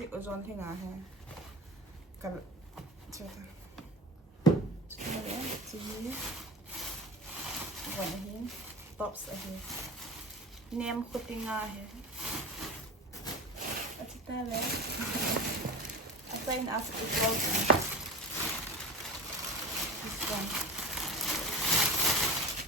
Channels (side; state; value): both; normal; correlation 0.31